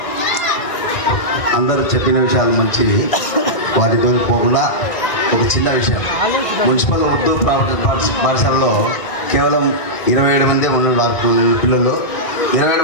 అందరూ చెప్పిన విషయాలు మంచివి, వాటితో పోకుండా ఒక చిన్న విషయం. మున్సిపల్ ఉర్దూ పాఠశాలలో కేవలం 27 మంది ఉన్నారు పిల్లలు. 27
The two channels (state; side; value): late; right; 1.6 ms